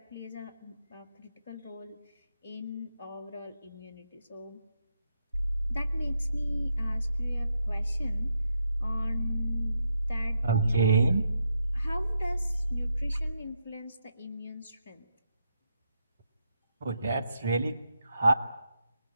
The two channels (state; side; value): inverted; both; correlation -0.82